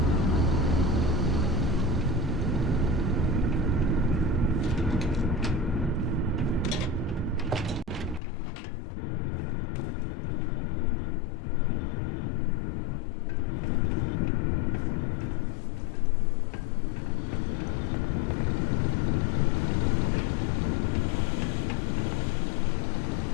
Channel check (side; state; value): right; drops out; at 8.2 s